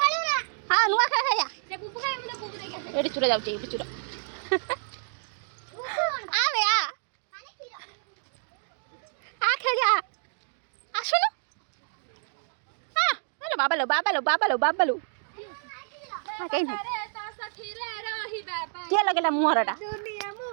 হ্যাঁ নুয়া খেলা খাইয়া এটি চুরা যাচ্ছে এটি চুরা আরে খেলা আসো না হ্যালো বাবালো বাবালো বাবালো বাবালো হ্যাঁ কেন কে লাগেলা মুহরটা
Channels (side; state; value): left; silent; digital silence